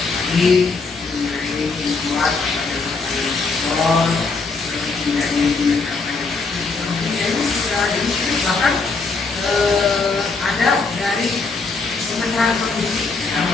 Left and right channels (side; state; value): right; quieter; 4.1 dB